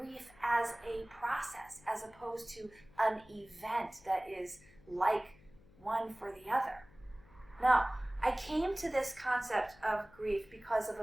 as a process, as opposed to an event that is like one for the other. Now, I came to this concept of grief because of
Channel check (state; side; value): noise; left; hum, 25 dB below the sound